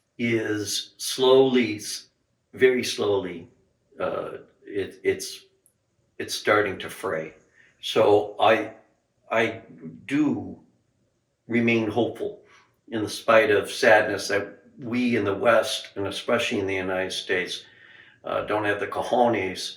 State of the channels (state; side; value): identical; both; correlation 1.00